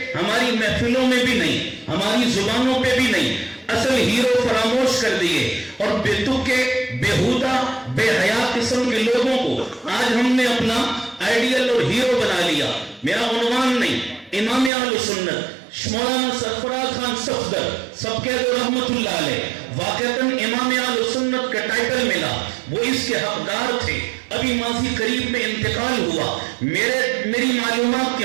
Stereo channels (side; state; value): left; drops out; at 14.7 s